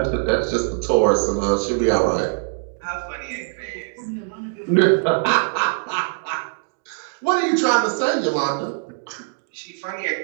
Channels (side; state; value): left; silent; 64 dB below the other